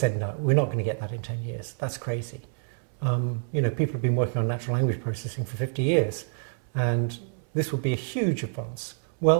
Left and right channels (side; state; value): left; silent; 60 dB below the other